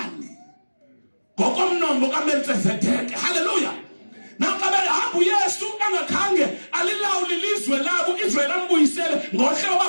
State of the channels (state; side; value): inverted; both; correlation -1.00